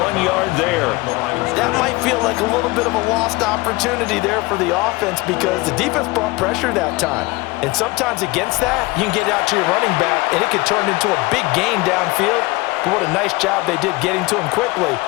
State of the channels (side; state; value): right; quieter; 22.8 dB